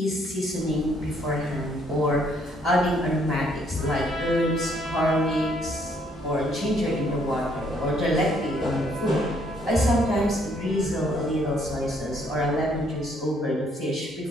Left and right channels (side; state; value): both; normal; correlation 0.67